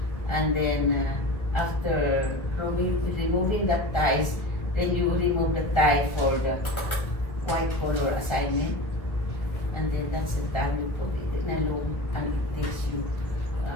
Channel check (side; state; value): right; late; 1.6 ms